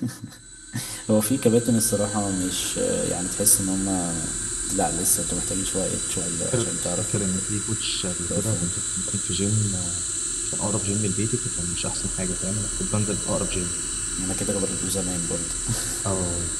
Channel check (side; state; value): both; identical; correlation 1.00